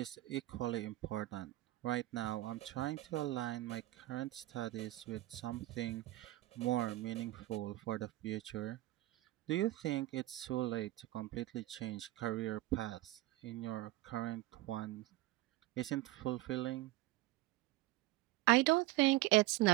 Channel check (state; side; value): quieter; left; 17.4 dB